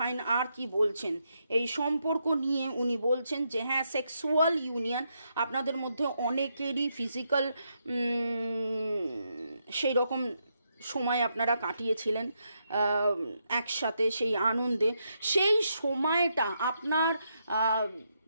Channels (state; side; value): inverted; both; correlation -0.80